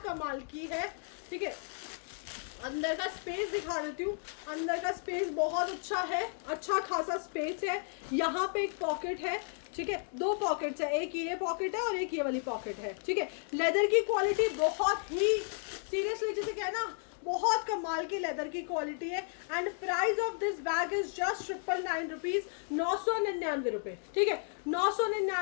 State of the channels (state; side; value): silent; right; 55 dB below the other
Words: कमाल की है, ठीक है। अंदर का स्पेस दिखा देती हूँ। अंदर का स्पेस बहुत अच्छा है, अच्छा खासा स्पेस है। यहाँ पे एक पॉकेट है, ठीक है। 2 पॉकेट्स है, एक ये पॉकेट है और एक ये वाली पॉकेट है, ठीक है। लेदर की क्वालिटी बहुत ही सीरियसली जिसे कहना बहुत कमाल की लेदर की क्वालिटी है। And price of this bag is just 999 rupees, 999 रुपये, ठीक है।